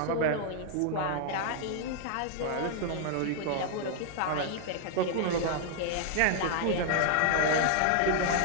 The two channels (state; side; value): different; both; correlation -0.01